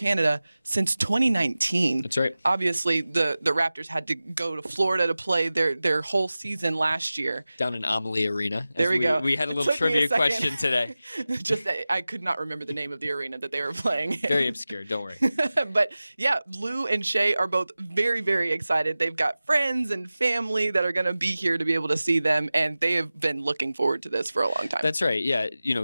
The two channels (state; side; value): inverted; both; correlation -0.96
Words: since 2019. That's right. Obviously, the Raptors had to go to Florida to play their whole season last year. Down in Amalie Arena. There we go. We had a little trivia question today. Just that I could not remember the name of the arena that they were playing in. Very obscure, don't worry. But yeah, Lu and Shai are both very, very excited. They've got friends and family that are going to be here to be able to see them, and they have been looking forward to this for a long time. That's right. Yeah,